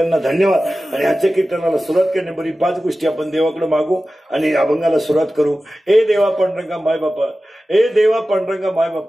धन्यवाद आणि आजच्या कीर्तनाला सुरुवात करण्यापूर्वी 5 गोष्टी आपण देवाकडे मागू आणि अभंगाला सुरुवात करू ए देवा पांडुरंगा माय बापा ए देवा पांडुरंगा माय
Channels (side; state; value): both; normal; correlation 0.95